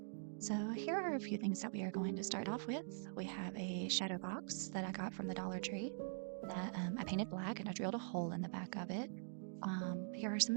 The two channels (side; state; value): left; silent; digital silence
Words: So, here are a few things that we are going to start off with. We have a shadow box that I got from the Dollar Tree that I painted black and I drilled a hole in the back of it. Here are some